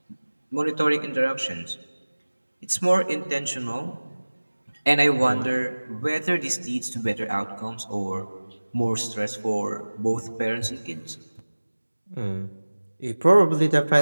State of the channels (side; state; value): both; inverted; correlation -1.00